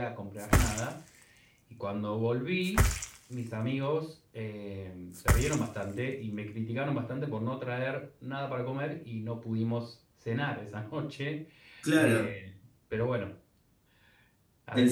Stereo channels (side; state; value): both; identical; correlation 1.00